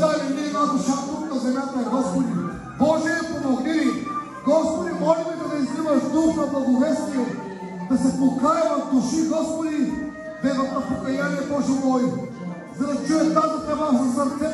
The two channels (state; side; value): identical; both; correlation 1.00